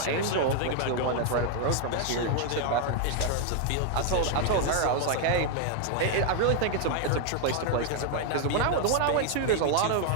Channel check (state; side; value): different; both; correlation 0.00